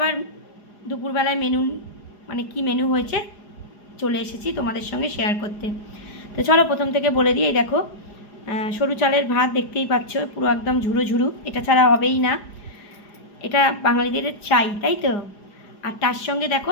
দুপুরবেলায় মেনু মানে কি মেনু হয়েছে চলে এসেছি তোমাদের সঙ্গে শেয়ার করতে। তো চলো প্রথম থেকে বলে দিই। এই দেখো সরু চালের ভাত দেখতেই পাচ্ছ, পুরো একদম ঝুরো ঝুরো, এটা ছাড়া হবেই না, এটা বাঙালিদের চাই, তাই তো। আর তার সঙ্গে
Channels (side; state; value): right; late; 4.9 ms